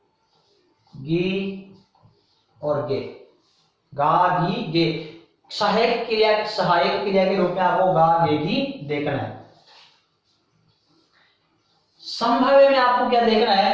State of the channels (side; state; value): both; identical; correlation 1.00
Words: गी और गे, गा गी गे। सहायक क्रिया के रूप में आपको गा गे गी देखना है। संभाव्य में आपको क्या देखना